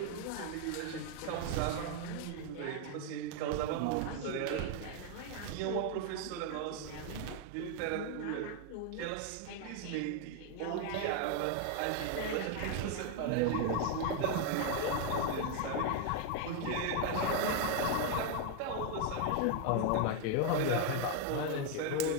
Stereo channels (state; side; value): different; both; correlation 0.01